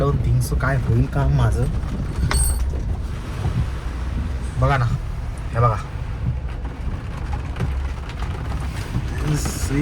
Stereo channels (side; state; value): both; identical; correlation 1.00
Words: थिंक सो काय होईल काम माझं. बघा ना, हे बघा,